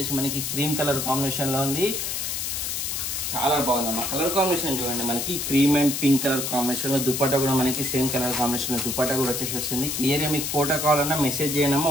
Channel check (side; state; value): left; noise; hiss, 2 dB below the sound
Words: మనకి క్రీమ్ కలర్ కాంబినేషన్లో ఉంది. చాలా బాగుందమ్మా. కలర్ కాంబినేషన్ చూడండి, మనకి క్రీమ్ అండ్ పింక్ కలర్ కాంబినేషన్లో. దుపట్టా కూడా మనకి సేమ్ కలర్ కాంబినేషన్లో దుపట్టా కూడా వచ్చేసి వస్తుంది. క్లియర్గా మీకు ఫోటో కావాలన్నా మెసేజ్